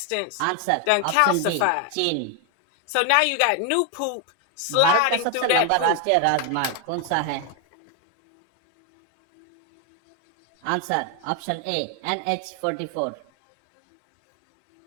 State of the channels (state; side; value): different; both; correlation 0.01